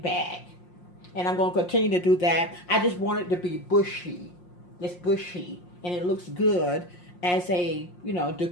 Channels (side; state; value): right; late; 5.6 ms